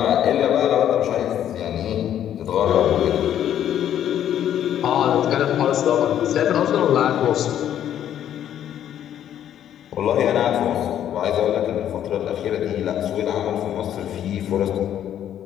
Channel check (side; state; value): right; quieter; 10.6 dB